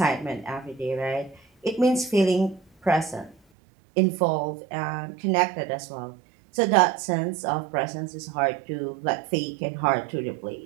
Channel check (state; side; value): drops out; left; at 3.4 s